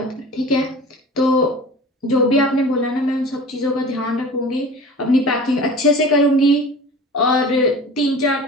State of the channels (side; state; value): both; normal; correlation 0.39